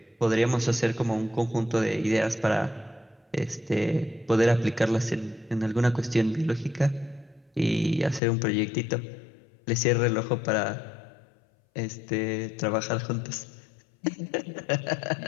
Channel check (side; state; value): right; drops out; at 8.2 s